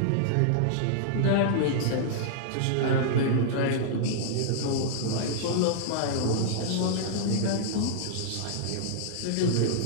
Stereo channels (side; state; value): both; different; correlation -0.02